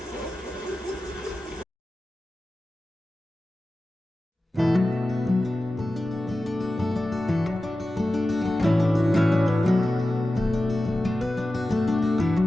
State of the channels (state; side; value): normal; both; correlation 0.94